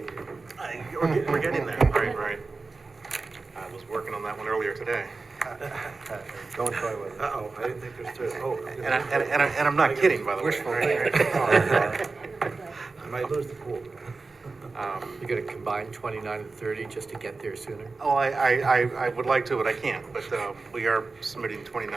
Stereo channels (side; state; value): left; quieter; 3.9 dB